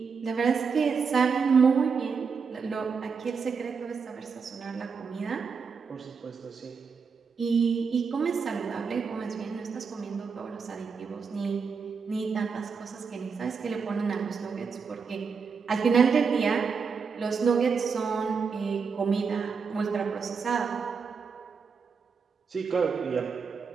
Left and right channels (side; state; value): left; quieter; 5.6 dB